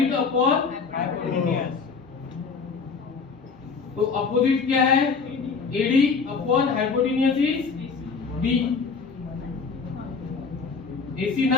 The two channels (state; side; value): quieter; right; 5.0 dB